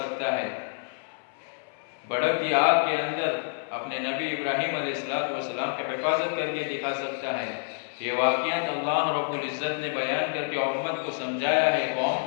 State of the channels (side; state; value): right; silent; 59 dB below the other